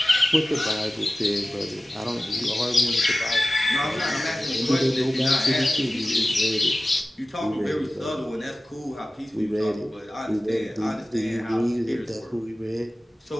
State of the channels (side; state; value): both; normal; correlation 0.96